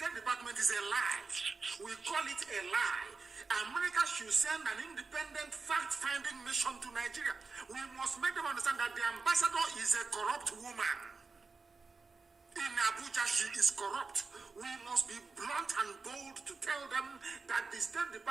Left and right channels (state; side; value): quieter; left; 4.3 dB